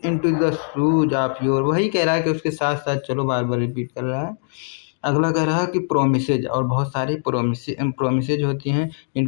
into the shoes of your. वही कह रहा है कि उसके साथ साथ चलो, बार बार रिपीट कर रहा है। अगला कह रहा है कि प्रोमिसेज, और बहुत सारी प्रोमिसेज होती हैं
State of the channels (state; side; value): silent; right; digital silence